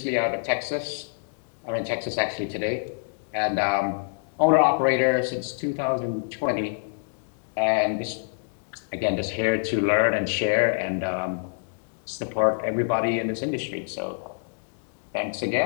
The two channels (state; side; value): silent; right; digital silence